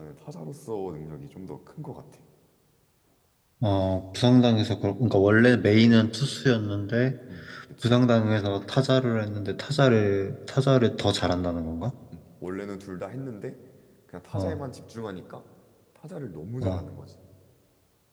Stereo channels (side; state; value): both; identical; correlation 1.00